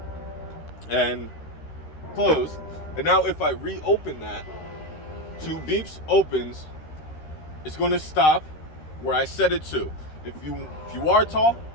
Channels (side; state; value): right; late; 13 ms